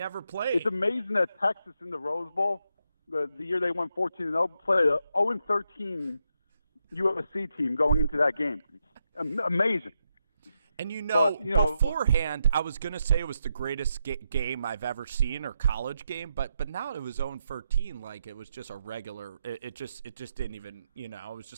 amazing that Texas in the Rose Bowl, the year they won 14-0, played a 0-13 USC team going into that game. Amazing. And beforehand, I was going to say it was the greatest game I've ever seen, or college game, but now it was 0-13, like it was just a regular. It just didn't even, it was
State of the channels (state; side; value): inverted; both; correlation -0.83